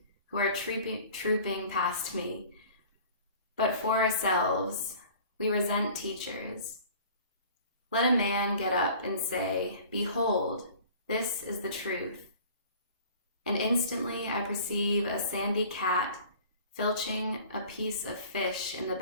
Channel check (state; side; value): inverted; both; correlation -0.47